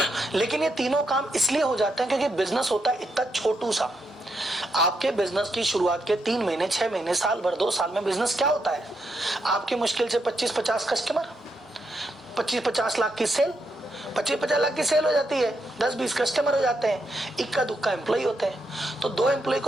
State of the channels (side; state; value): both; normal; correlation 0.81